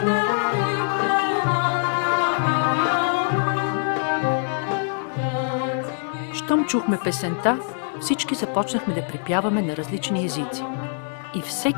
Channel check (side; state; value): right; silent; 63 dB below the other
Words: Щом чухме песента, всички започнахме да припяваме на различни езици. И